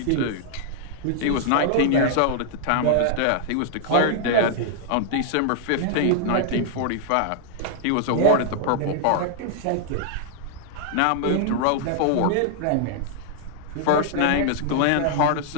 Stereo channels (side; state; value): both; different; correlation -0.01